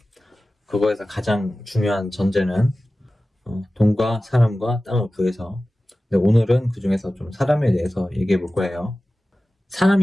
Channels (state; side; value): normal; both; correlation 0.96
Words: 그거에서 가장 중요한 전제는 돈과 사람과 땅을 구해서. 근데 오늘은 그 중에서 좀 사람에 대해서 얘기해 볼 거예요.